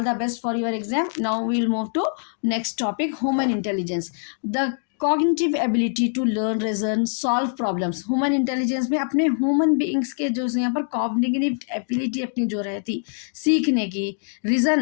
the best for your exam. Now we'll move to next topic, human intelligence, the cognitive ability to learn, reason, solve problems. Human intelligence में अपने human beings के जो यहाँ पर cognitive ability अपनी जो रहती सीखने की,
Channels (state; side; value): silent; right; digital silence